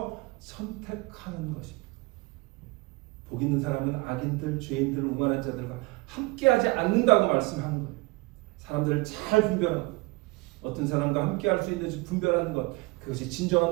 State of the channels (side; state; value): left; quieter; 23.8 dB